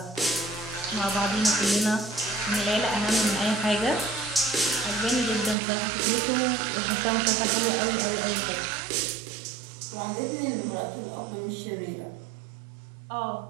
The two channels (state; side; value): drops out; left; at 5.6 s